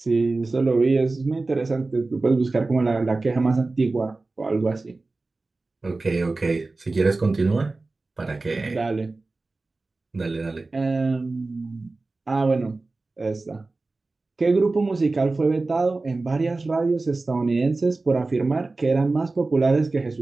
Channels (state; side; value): quieter; left; 3.4 dB